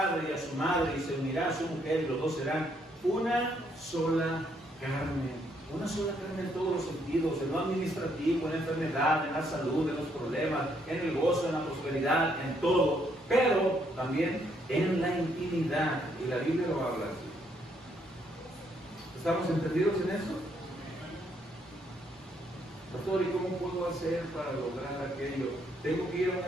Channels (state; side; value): normal; both; correlation 0.72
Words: y a su madre y se unirá a su mujer y los dos serán una sola carne. Una sola carne en todos los sentidos, en lo administrativo, en la enfermedad, en la salud, en los problemas, en el gozo, en la prosperidad, en todo. Pero también en la intimidad. Y la Biblia lo habla así. ¿Estamos entendidos en eso? Pastor, ¿y cómo puedo hacer para lograr aquello? ¿Tengo que ir a